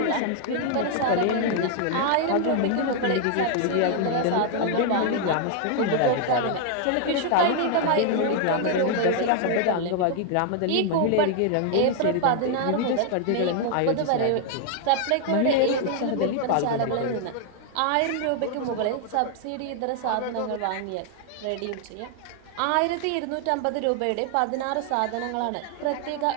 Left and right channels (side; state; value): both; different; correlation 0.00